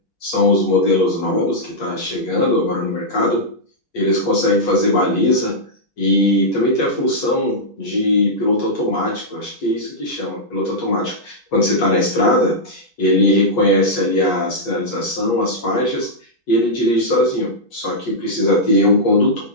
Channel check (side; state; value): right; late; 8.3 ms